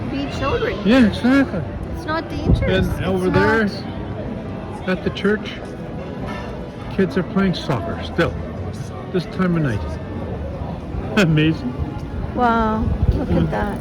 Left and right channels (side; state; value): both; identical; correlation 1.00